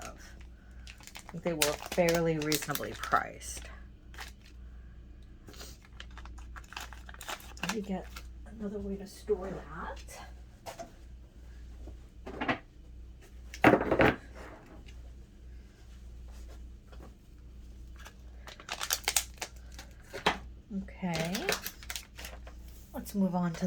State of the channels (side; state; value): both; identical; correlation 1.00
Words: I think they were fairly reasonably priced. Let me get another way to store that. Okay, let's move on to